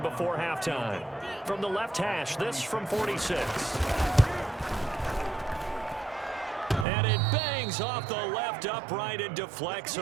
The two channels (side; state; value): left; drops out; at 6.9 s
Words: halftime. From the left hash, this from 46. And it bangs off the left upright and deflects